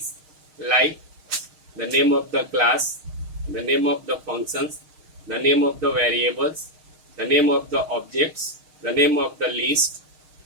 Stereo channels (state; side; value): late; left; 6.5 ms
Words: like the name of the class, the name of the functions, the name of the variables, the name of the objects, the name of the list,